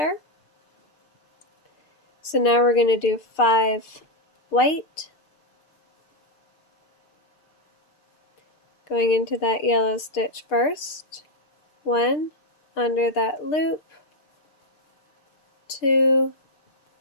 So now we're going to do 5 white, going into that yellow stitch first, 1 under that loop, 2,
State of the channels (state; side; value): late; right; 2.6 ms